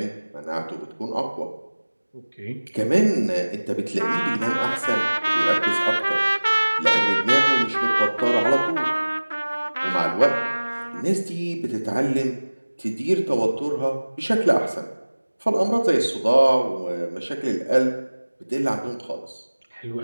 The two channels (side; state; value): both; inverted; correlation -1.00